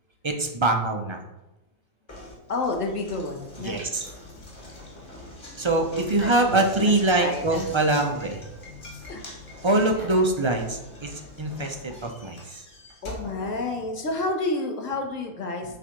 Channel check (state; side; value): late; left; 1.3 ms